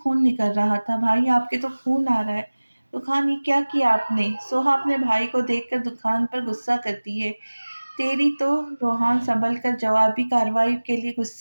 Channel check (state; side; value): inverted; both; correlation -1.00